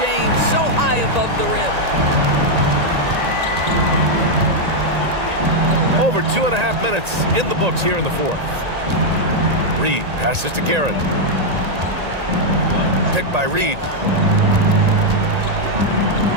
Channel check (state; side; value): late; left; 1.9 ms